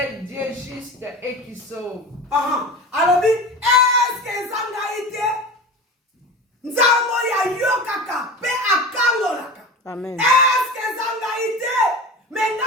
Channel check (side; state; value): both; normal; correlation 0.31